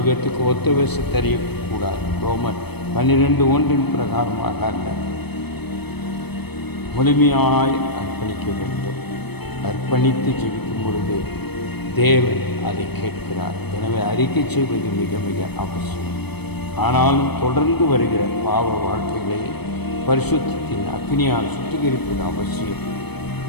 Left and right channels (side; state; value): right; late; 0.98 ms